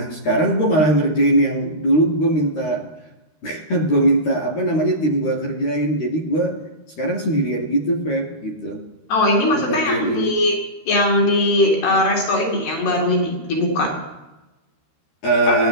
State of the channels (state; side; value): late; right; 13 ms